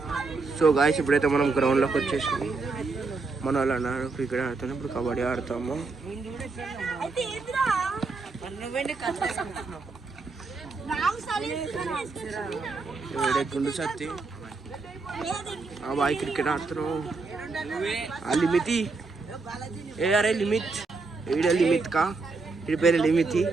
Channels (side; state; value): left; quieter; 4.0 dB